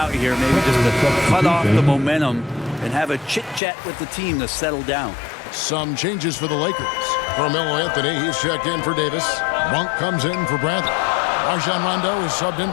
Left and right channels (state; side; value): drops out; right; at 3.6 s